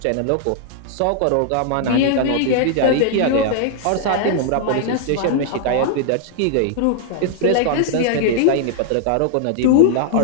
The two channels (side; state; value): both; different; correlation -0.01